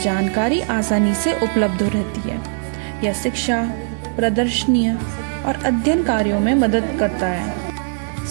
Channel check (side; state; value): left; silent; digital silence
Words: जानकारी आसानी से उपलब्ध रहती है। यह शिक्षा, प्रदर्शनी और अध्ययन कार्यों में मदद करता है।